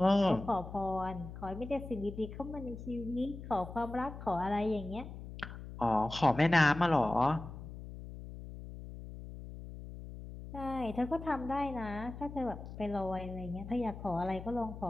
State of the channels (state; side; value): noise; left; hum, 11 dB below the sound